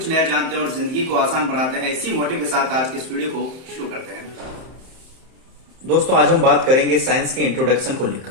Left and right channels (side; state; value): left; late; 31 ms